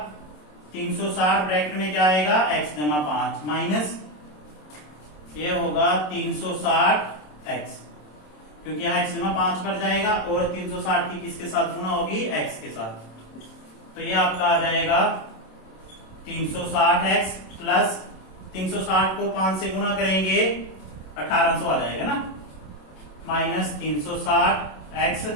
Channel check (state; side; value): late; right; 27 ms